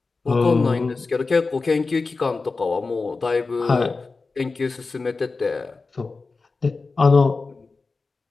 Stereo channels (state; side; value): quieter; right; 4.0 dB